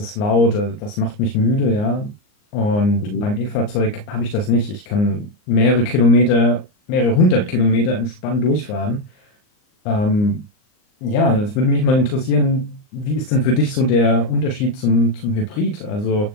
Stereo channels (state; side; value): late; right; 39 ms